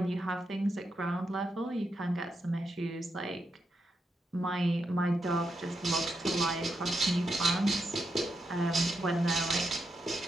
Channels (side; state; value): both; normal; correlation 0.84